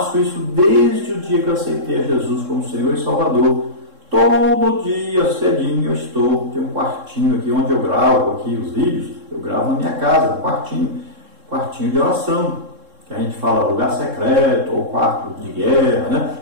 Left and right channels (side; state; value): left; late; 3.7 ms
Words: isso desde o dia que eu aceitei a Jesus como Senhor e Salvador. Todo dia cedinho tem um quartinho aqui onde eu gravo aqui os vídeos, eu gravo na minha casa, um quartinho de oração, que a gente fala lugar secreto ou quarto de guerra, né?